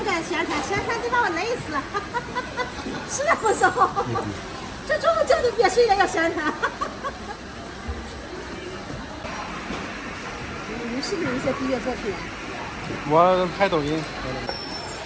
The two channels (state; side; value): identical; both; correlation 1.00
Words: 敢宣传，宣传得把我累死。是那不少，这中午叫你别睡了要宣传。你是不是有一些毕业作品？我拍抖音，